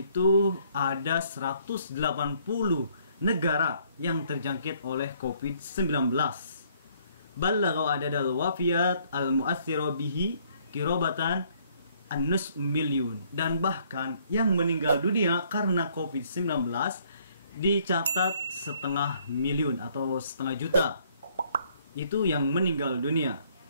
ada 180 negara yang terjangkit oleh COVID-19. Ballagha adadal wafiyat al-mu'aththira bihi kirobatan an-nus milyun. Dan bahkan yang meninggal dunia karena COVID-19 dicatat 1,5 miliun atau 1,5 juta. Itu yang meninggal dunia.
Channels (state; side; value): inverted; both; correlation -0.65